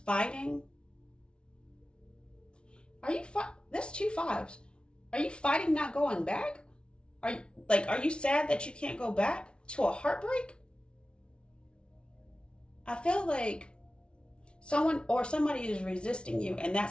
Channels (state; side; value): late; right; 0.057 ms